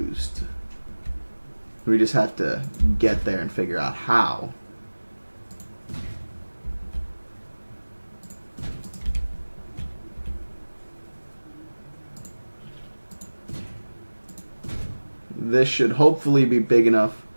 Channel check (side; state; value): both; inverted; correlation -1.00